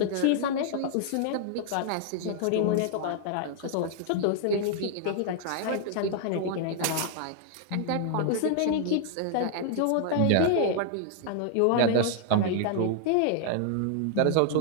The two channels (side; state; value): both; different; correlation 0.00